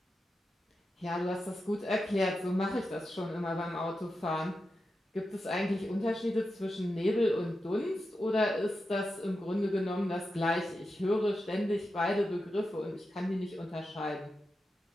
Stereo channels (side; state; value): both; normal; correlation 0.90